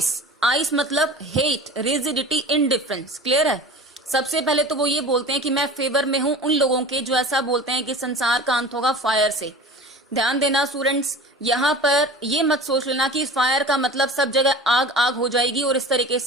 मतलब हेट, रिजिडिटी, इनडिफरेंस। क्लियर है। सबसे पहले तो वो ये बोलते हैं कि मैं फेवर में हूं उन लोगों के जो ऐसा बोलते हैं कि संसार का अंत होगा फायर से। ध्यान देना स्टूडेंट्स, यहाँ पर ये मत सोच लेना कि फायर का मतलब सब जगह आग आग हो जाएगी और इस तरीके से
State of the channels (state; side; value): normal; both; correlation 0.38